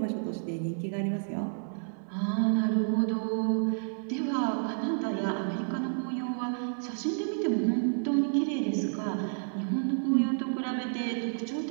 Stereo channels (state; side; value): silent; left; 58 dB below the other